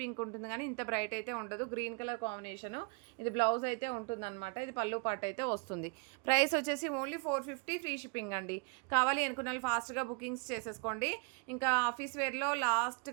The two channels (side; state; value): left; quieter; 34.8 dB